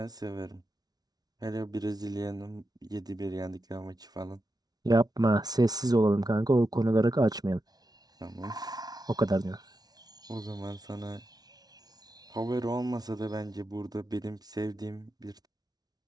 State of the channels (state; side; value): late; left; 0.19 ms